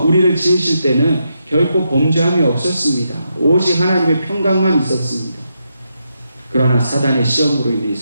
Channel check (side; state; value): both; inverted; correlation -0.83